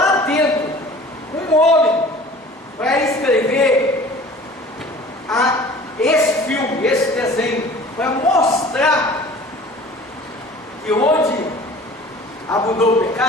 dentro um homem para escrever esse filme, esse desenho, para mostrar que onde abundou o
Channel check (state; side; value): normal; both; correlation 0.45